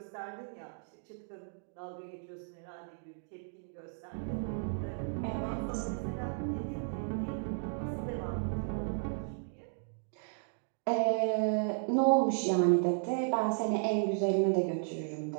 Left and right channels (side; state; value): left; silent; digital silence